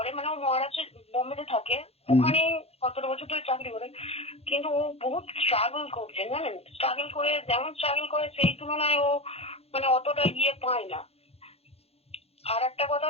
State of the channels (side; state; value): right; late; 0.29 ms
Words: ও মহারাষ্ট্রের বোম্বেতে থাকে। ওখানে 17 বছর ধরে চাকরি করে, কিন্তু ও বহুত স্ট্রাগল করছে, জানেন। স্ট্রাগল করে, যেমন স্ট্রাগল করে সেই তুলনায় ও অতটা পায় না। আর একটা কথা